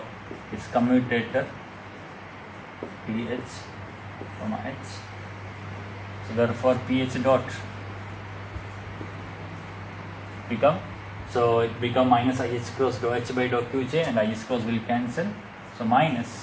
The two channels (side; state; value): both; identical; correlation 1.00